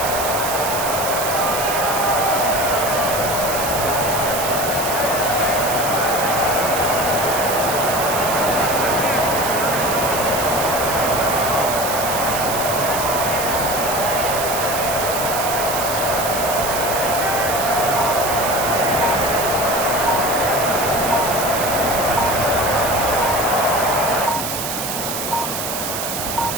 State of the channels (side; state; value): right; noise; hiss, 4 dB below the sound